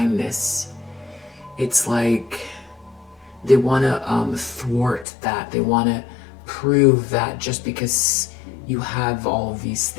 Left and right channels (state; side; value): drops out; right; at 5.1 s